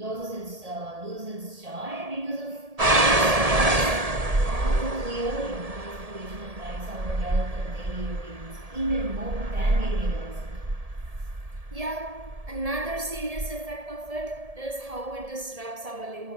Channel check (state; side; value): late; left; 1.7 ms